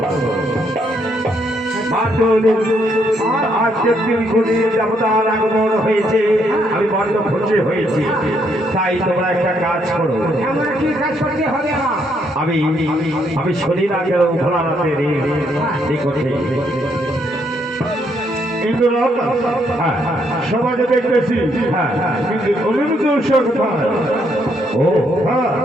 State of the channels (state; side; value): normal; both; correlation 0.73